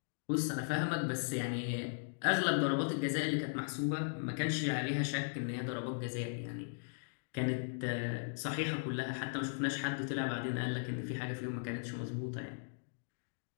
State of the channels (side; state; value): right; silent; digital silence